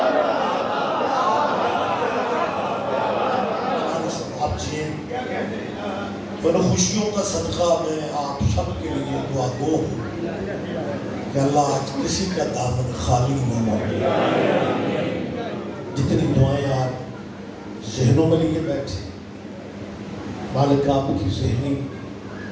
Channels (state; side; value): identical; both; correlation 1.00